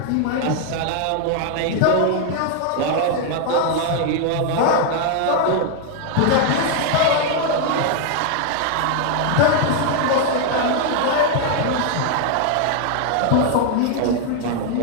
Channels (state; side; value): different; both; correlation 0.00